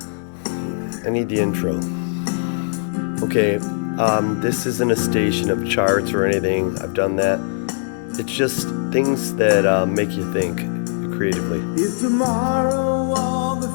I need the intro. Okay, this isn't a station of charts or anything. I've done that. It's just things that make you think creatively. If tomorrow all the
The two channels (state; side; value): silent; right; digital silence